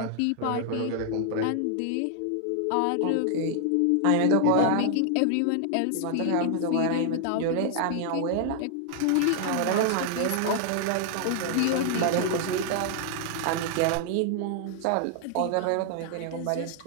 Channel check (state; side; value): different; both; correlation 0.00